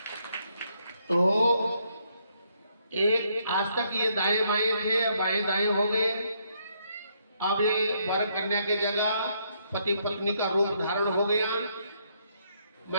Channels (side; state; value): both; inverted; correlation -0.73